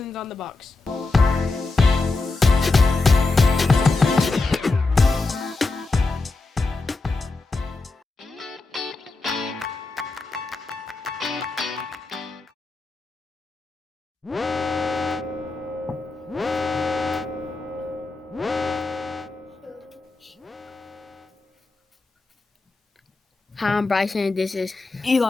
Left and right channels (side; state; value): right; quieter; 3.5 dB